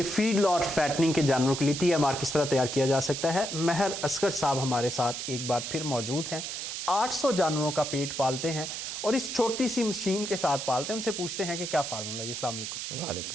फीडलॉट फैटनिंग के जानवरों के लिए TMR किस तरह तैयार किया जा सकता है। महर असगर साहब हमारे साथ एक बार फिर मौजूद हैं। 800 जानवरों का पेट पालते हैं और इस छोटी सी मशीन के साथ पालते हैं। उनसे पूछते हैं कि क्या फार्मूला है। अस्सलाम वालेकुम।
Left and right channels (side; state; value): right; noise; hiss, 5 dB below the sound